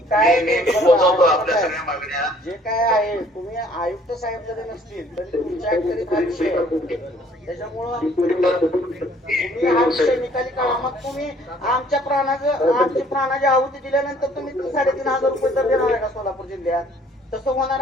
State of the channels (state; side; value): normal; both; correlation 0.58